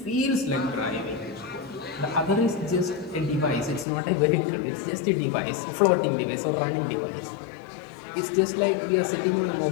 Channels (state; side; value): drops out; right; at 3.9 s